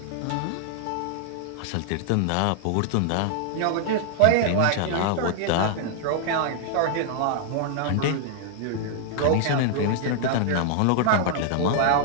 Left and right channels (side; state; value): both; different; correlation 0.00